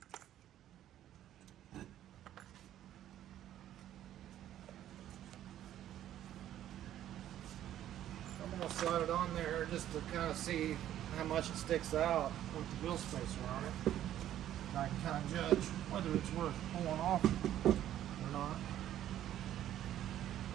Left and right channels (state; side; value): quieter; left; 11.9 dB